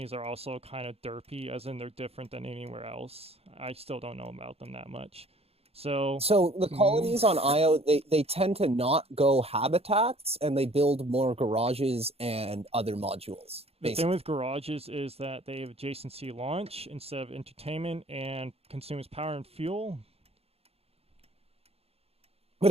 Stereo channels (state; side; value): late; left; 0.29 ms